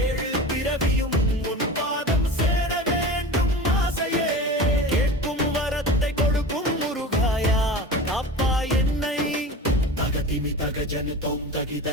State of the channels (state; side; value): normal; both; correlation 0.33